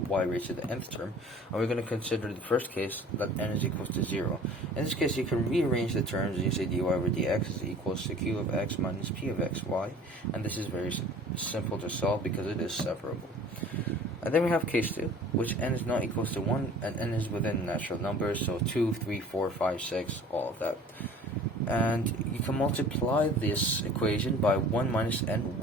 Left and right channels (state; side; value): normal; both; correlation 0.47